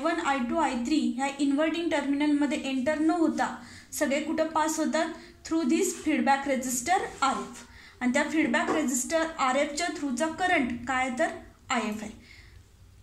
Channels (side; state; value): both; identical; correlation 1.00